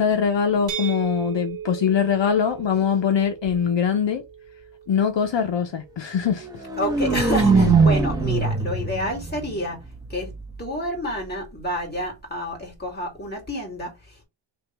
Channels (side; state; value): both; normal; correlation 0.18